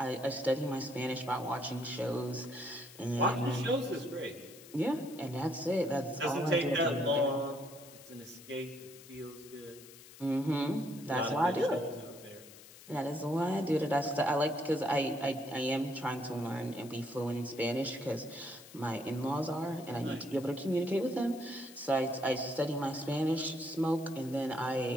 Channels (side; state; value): left; noise; hiss, 19 dB below the sound